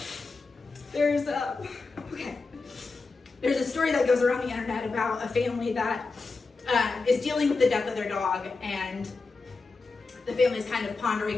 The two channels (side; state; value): right; quieter; 4.0 dB